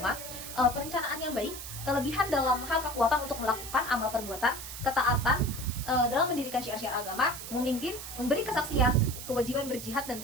perencanaan yang baik, kelebihan dalam hal kekuatan untuk melakukan amal perbuatan, ketaatan dalam mendirikan syiar-syiar agama, memimpin, memberi kesaksian, kewajiban berjihad dan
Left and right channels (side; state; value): right; noise; hiss, 10 dB below the sound